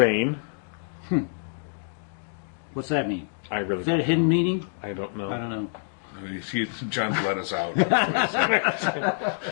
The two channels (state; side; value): silent; right; digital silence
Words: What's that mean? I really. Is that a hidden meaning? I don't know. I don't know. John's let us out.